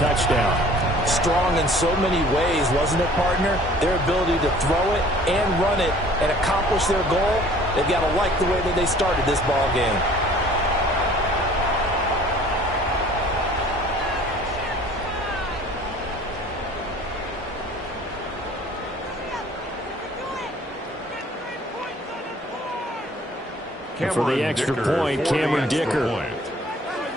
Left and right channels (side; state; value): both; normal; correlation 0.51